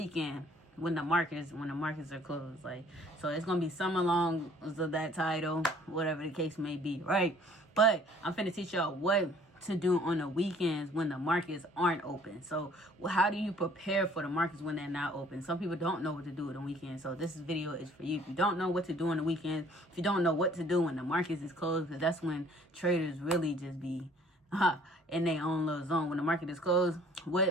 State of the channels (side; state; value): both; normal; correlation 0.56